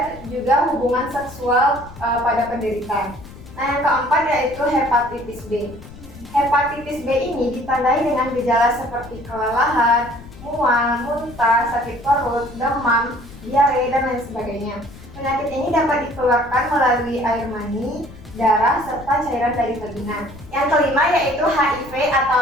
juga hubungan seksual pada penderita. Nah, yang keempat yaitu hepatitis B. Hepatitis B ini ditandai dengan gejala seperti kelelahan, mual, muntah, sakit perut, demam, diare, dan lain sebagainya. Penyakit ini dapat ditularkan melalui air mani, darah, serta cairan dari vagina. Yang kelima yaitu HIV atau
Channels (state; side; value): noise; left; rumble, 17 dB below the sound